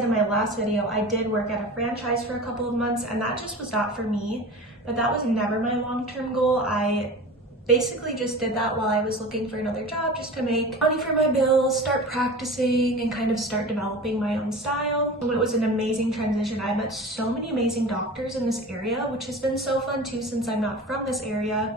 in my last video, I did work at a franchise for a couple of months, and that just was not for me, but that was never my long-term goal. I basically just did that while I was looking for another job, just to make money for my bills, start practicing, and kind of start developing my own style. It was an amazing transition. I met so many amazing doctors in this area, which has been so fun too since I'm not from this area.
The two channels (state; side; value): normal; both; correlation 0.35